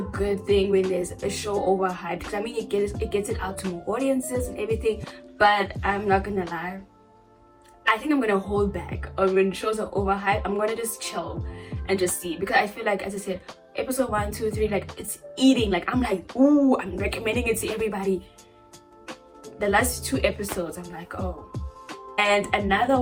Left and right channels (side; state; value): both; identical; correlation 1.00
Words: good thing when there's a show overhyped, because I mean, it gets it out to more audiences and everything. But I'm not gonna lie, I think I'm gonna hold back on when shows are overhyped. I'm gonna just chill and just see, because I feel like, as I said, episode 1, 2, 3, like it's eating. Like I'm like, ooh, I'm recommending it to everybody. The last 2 episodes, I'm like, oh. And another